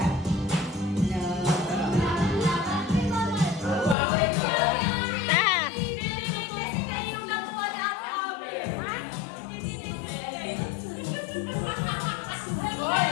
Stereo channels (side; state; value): right; drops out; at 4.0 s